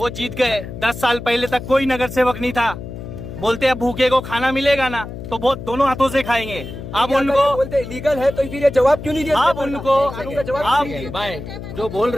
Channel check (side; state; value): left; noise; hum, 10 dB below the sound